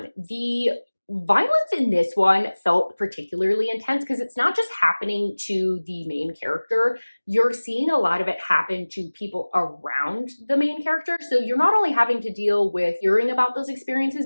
the violence in this one felt particularly intense because it's not just happening to the main character. You're seeing a lot of it happen to people around the main character. So you're not only having to deal with hearing about those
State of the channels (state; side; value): inverted; both; correlation -1.00